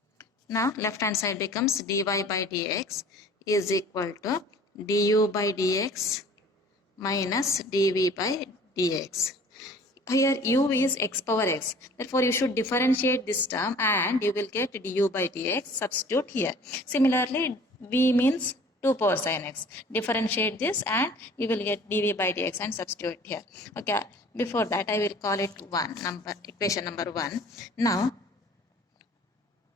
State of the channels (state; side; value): normal; both; correlation 0.49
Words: Now left hand side becomes dy by dx is equal to du by dx minus dv by dx. Here u is x power x. Therefore, you should differentiate this term and you will get du by dx. Substitute here. Similarly, v means 2 power sin x. Differentiate this and you will get dv by dx and substitute here. Okay. Before that, I will call it equation number 1. Now,